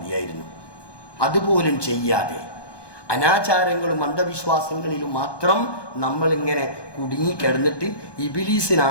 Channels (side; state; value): right; late; 1.2 ms